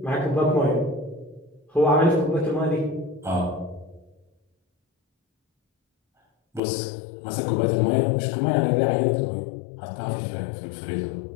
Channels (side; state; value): right; drops out; at 6.6 s